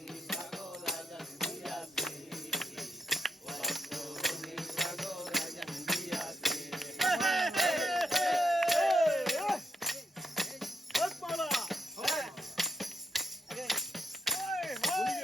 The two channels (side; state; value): both; normal; correlation 0.80